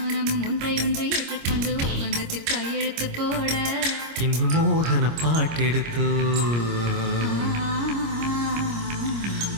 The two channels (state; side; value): late; left; 25 ms